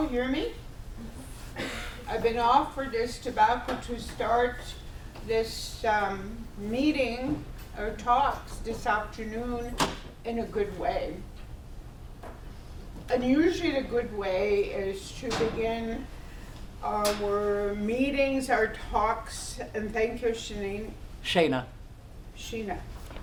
hear me? I've been offered this tobacco to start this meeting or talks this afternoon in a good way. And usually the good way is to begin our meetings, our talks, and thank you, Shayna. Sheena.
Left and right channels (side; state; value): both; identical; correlation 1.00